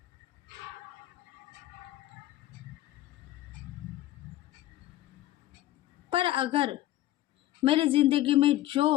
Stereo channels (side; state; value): right; quieter; 14.8 dB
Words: पर अगर मेरी ज़िंदगी में